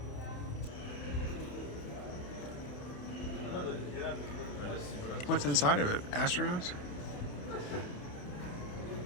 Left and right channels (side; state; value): right; late; 28 ms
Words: What's inside of it? Astronauts?